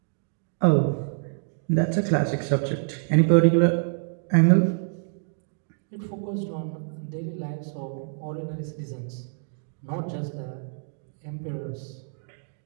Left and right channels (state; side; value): silent; left; digital silence